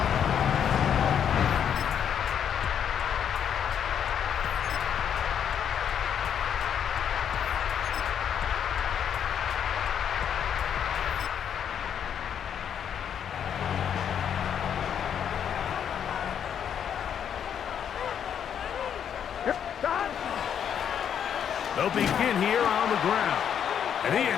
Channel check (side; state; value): right; quieter; 8.6 dB